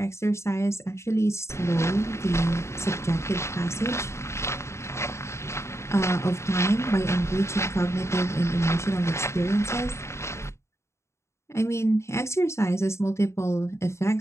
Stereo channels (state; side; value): late; right; 0.13 ms